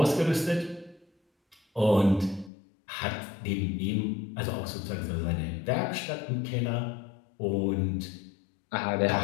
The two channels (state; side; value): drops out; right; at 2.5 s